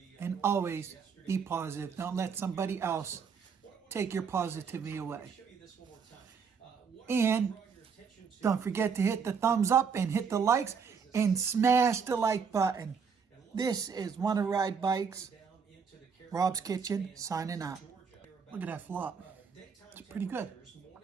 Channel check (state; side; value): quieter; left; 6.1 dB